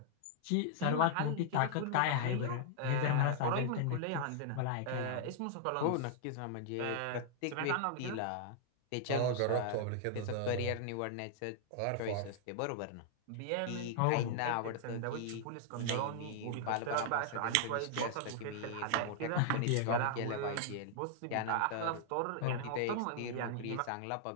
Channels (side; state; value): both; different; correlation -0.01